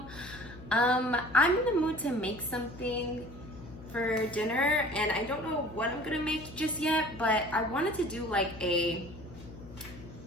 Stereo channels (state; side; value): noise; left; hum, 16 dB below the sound